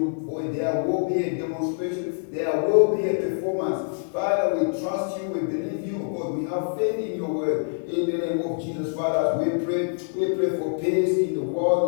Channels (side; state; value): right; silent; digital silence